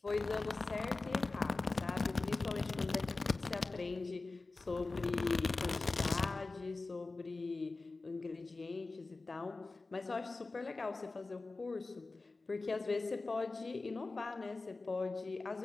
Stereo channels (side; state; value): right; quieter; 3.6 dB